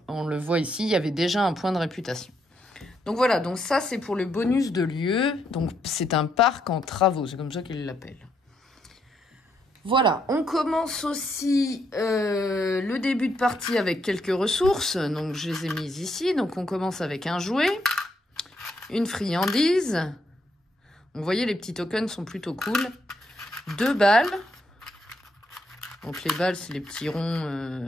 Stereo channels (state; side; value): normal; both; correlation 0.76